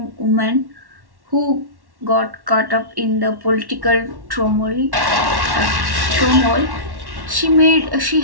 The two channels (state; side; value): late; left; 1.1 ms